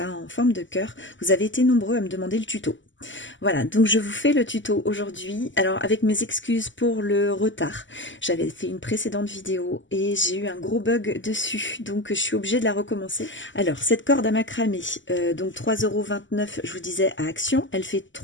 en forme de cœur, vous avez été nombreux à me demander le tuto. Voilà, donc je vous fais le tuto aujourd'hui. Alors avec mes excuses pour le retard, j'avais fait une précédente vidéo et j'ai eu un gros bug dessus, donc je suis obligée de la recommencer. Alors cette corde à macramé, donc 3,29 €, je vous disais à Action, elle fait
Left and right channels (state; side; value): late; right; 0.55 ms